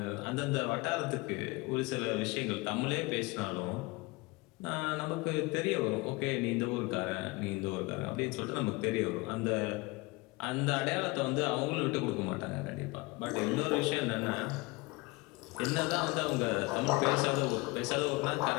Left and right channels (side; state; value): right; quieter; 24.0 dB